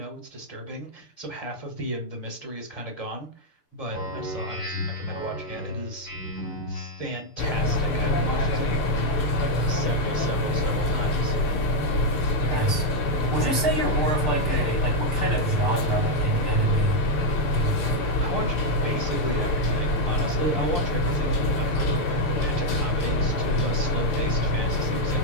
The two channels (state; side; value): late; right; 6.7 ms